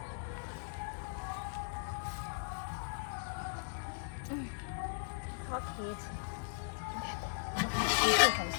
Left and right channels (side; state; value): right; silent; 53 dB below the other